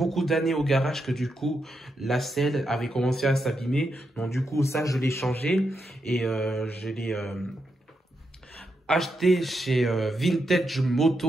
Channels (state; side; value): normal; both; correlation 0.84